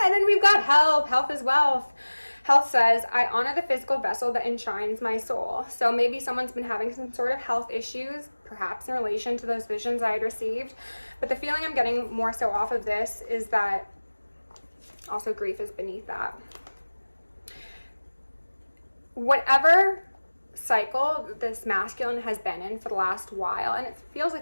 then we've got health. Health is wealth. Health says, I honor the physical vessel that enshrines my soul. So maybe someone's been having some sort of health issues, perhaps in relation to those visions I had received. But the feeling I'm getting more so off of this is that also grief is beneath that. Whatever cycle this masculine has been in for the last while, and it feels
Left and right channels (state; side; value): inverted; both; correlation -1.00